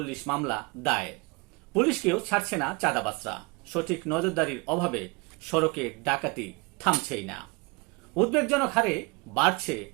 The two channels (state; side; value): quieter; left; 27.7 dB